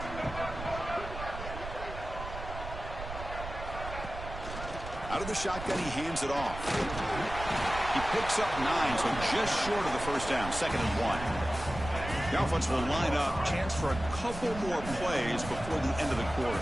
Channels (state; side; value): noise; right; rumble, 9 dB below the sound